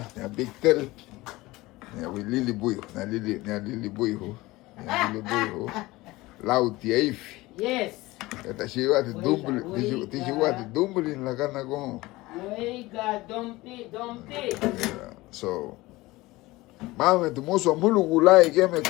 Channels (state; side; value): quieter; right; 19.9 dB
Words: Da big tel. Ya we lili buio. Na lili buio. Lauti eif. Yes. Esta chiva de dumbulin. Ti chiva de dumbulin la cana con. Oiga, dompi. So. Mame, tu moço mulu gulai que me